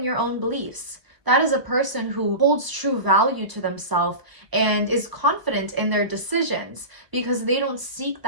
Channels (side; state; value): left; late; 1.1 ms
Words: your own beliefs. That is a person who holds true value to themselves and is confident in their decisions, because they don't seek